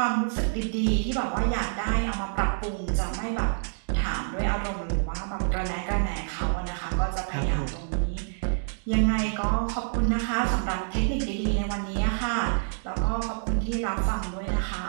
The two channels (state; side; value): silent; left; digital silence